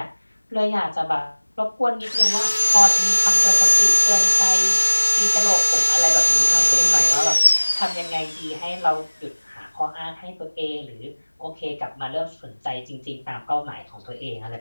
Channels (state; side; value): inverted; both; correlation -1.00